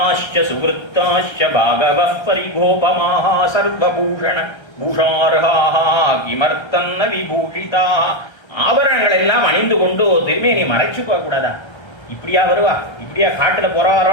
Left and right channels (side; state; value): right; late; 1.3 ms